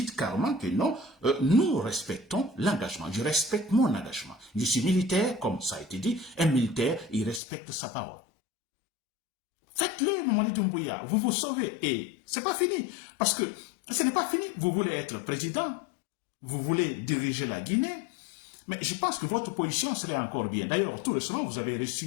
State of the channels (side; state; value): right; drops out; at 7.4 s